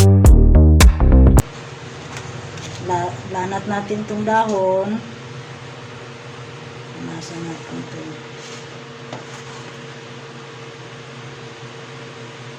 Lanat natin tong dahon. Nasa natin ito.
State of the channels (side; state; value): both; identical; correlation 1.00